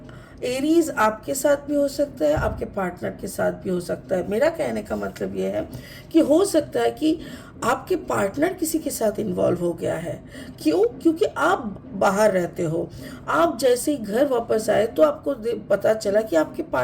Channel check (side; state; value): both; identical; correlation 1.00